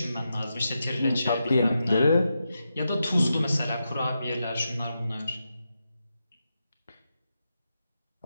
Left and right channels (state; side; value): inverted; both; correlation -0.87